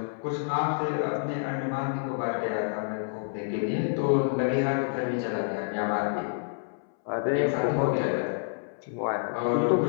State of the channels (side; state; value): right; silent; 59 dB below the other